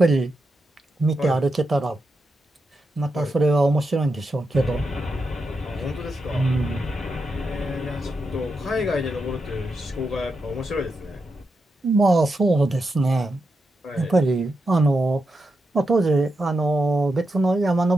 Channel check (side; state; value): both; normal; correlation 0.86